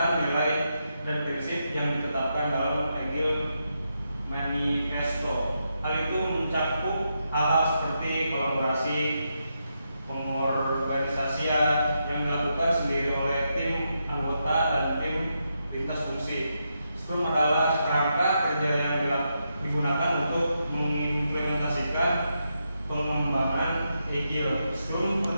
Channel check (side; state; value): both; inverted; correlation -0.84